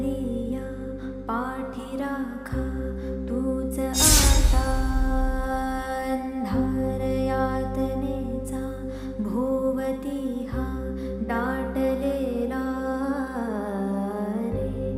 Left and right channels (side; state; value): both; identical; correlation 1.00